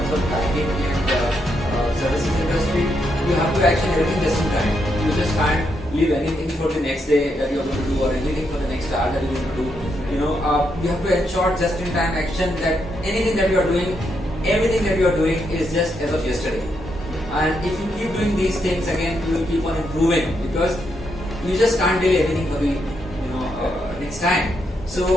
of banking and services industry, you have to action everything just in time. You just can't leave anything for the next day that you are going to do or anything for the next hour that you are going to do. You have to ensure just in time action that anything that you are doing, everything that you are doing is just as of yesterday. And if you keep doing these things, again, you will keep on improving because you just can't delay anything for the next time.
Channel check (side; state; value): both; normal; correlation 0.80